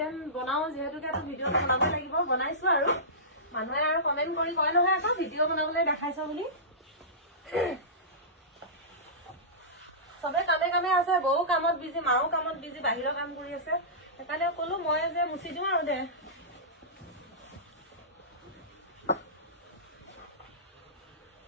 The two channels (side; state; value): both; normal; correlation -0.20